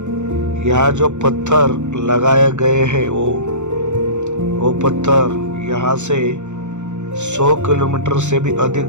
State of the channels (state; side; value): late; left; 0.84 ms